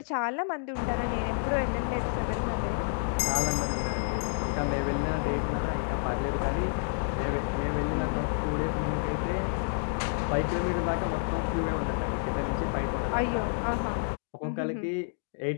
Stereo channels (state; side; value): silent; right; digital silence